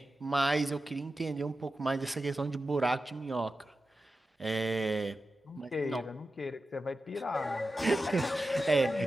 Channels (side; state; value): both; normal; correlation 0.92